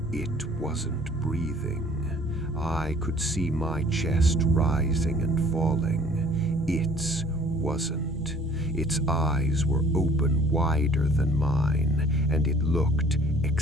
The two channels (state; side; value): normal; both; correlation 0.53